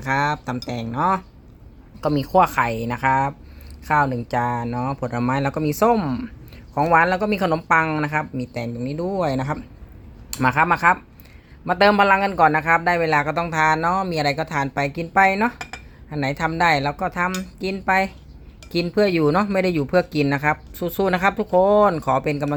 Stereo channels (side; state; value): both; identical; correlation 1.00